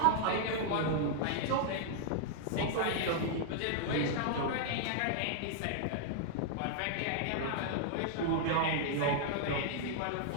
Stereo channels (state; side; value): different; both; correlation -0.01